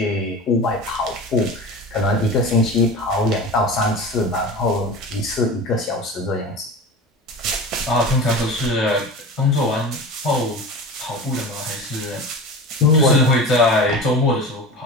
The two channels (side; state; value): both; normal; correlation 0.32